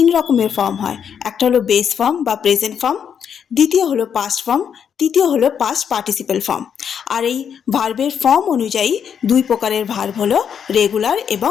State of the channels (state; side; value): quieter; right; 7.8 dB